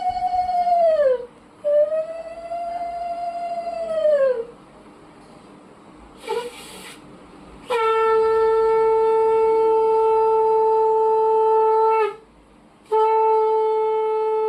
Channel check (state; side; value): identical; both; correlation 1.00